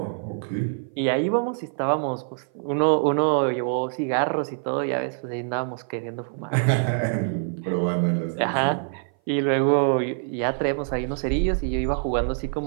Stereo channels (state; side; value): silent; left; 57 dB below the other